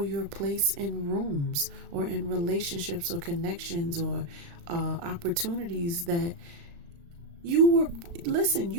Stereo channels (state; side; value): late; left; 35 ms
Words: your place in rooms or in relationships or connections or opportunities that you